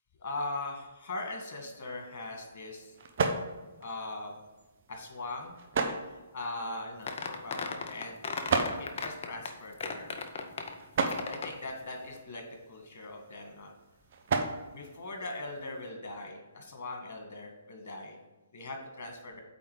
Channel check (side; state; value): both; inverted; correlation -0.59